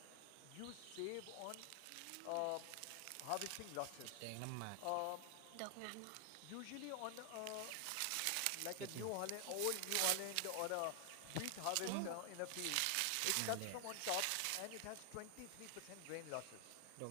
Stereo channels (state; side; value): different; both; correlation 0.00